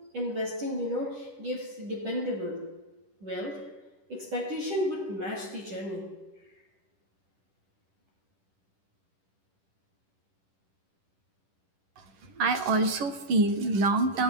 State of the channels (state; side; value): late; left; 10 ms